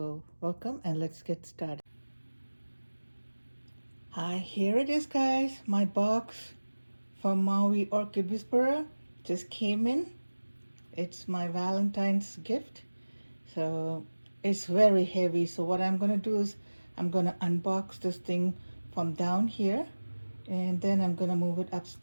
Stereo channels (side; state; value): both; inverted; correlation -1.00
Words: welcome and let's get started. Hi, here it is, guys. My box from MOW Orchid Whisperer just came in. It's my Valentine's gift. So it's very heavy. So what I'm gonna do is I'm gonna unbox this thing from down here and then I'm gonna move it